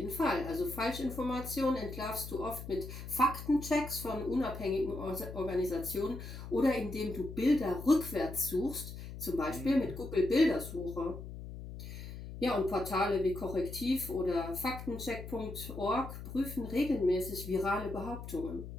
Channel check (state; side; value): noise; left; hum, 10 dB below the sound